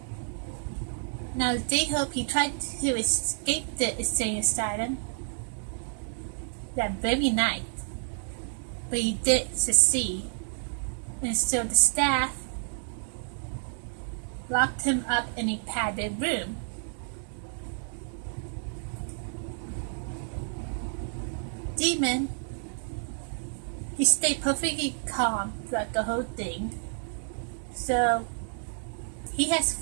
Now J-Hope, he tried to escape the insane asylum that very night, but he did succeed, and so the staff locked him up in a padded room. Demon, he stayed perfectly calm throughout the whole thing, so he has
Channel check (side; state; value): left; silent; 58 dB below the other